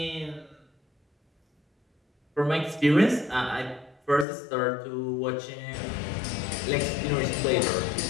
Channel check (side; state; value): right; drops out; at 4.2 s